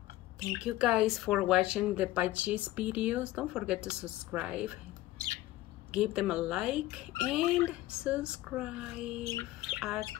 Thank you guys for watching the Budgies videos. Don't forget to subscribe. Give them a like and subscribe.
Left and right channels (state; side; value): quieter; right; 16.3 dB